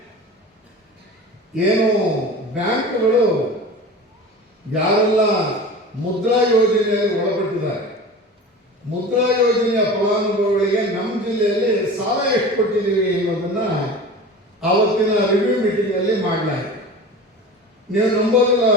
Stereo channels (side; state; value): both; normal; correlation 0.35